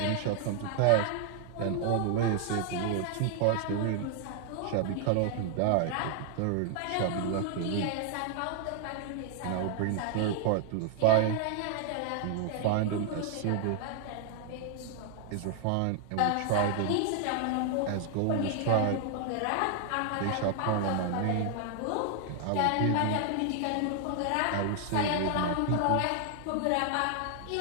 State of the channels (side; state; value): both; different; correlation 0.00